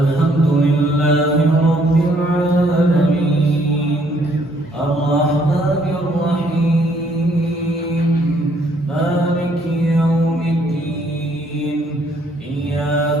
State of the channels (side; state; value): both; normal; correlation 0.66